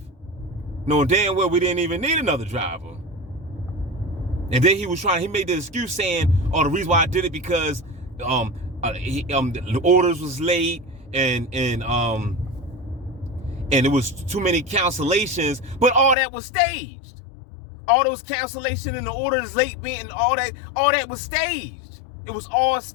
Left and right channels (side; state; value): right; drops out; at 16.2 s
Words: knowing damn well we didn't even need another driver. And then he made the excuse saying, oh, the reason why I did it because the orders was late and it was too many cancellations, but all that was staged. All those cancellations and the orders late being all that was staged. It was all